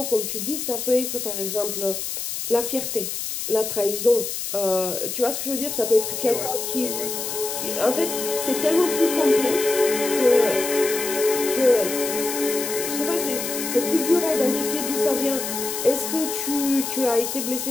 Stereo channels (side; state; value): left; noise; hiss, 4 dB below the sound